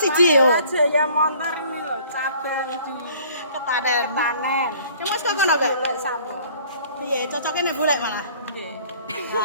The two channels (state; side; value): inverted; both; correlation -0.54